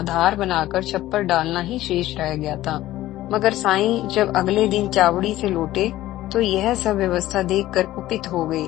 बनाकर छप्पर डालना ही शेष रह गया था। मगर साईं जब अगले दिन चावड़ी से लौटे तो यह सब व्यवस्था देखकर कुपित हो गए।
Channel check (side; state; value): right; quieter; 15.3 dB